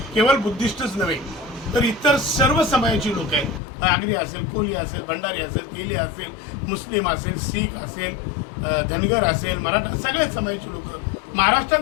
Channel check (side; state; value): right; drops out; at 3.6 s